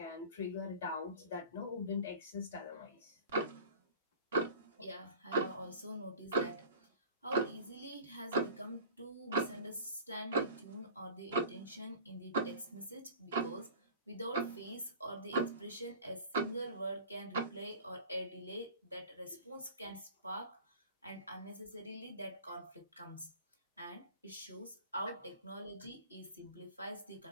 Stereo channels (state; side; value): inverted; both; correlation -0.41